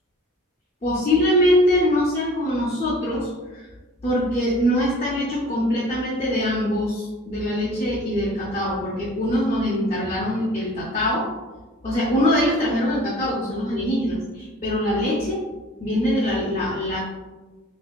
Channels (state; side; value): normal; both; correlation 0.47